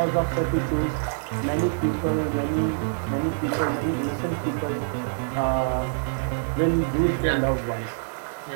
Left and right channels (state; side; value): silent; left; digital silence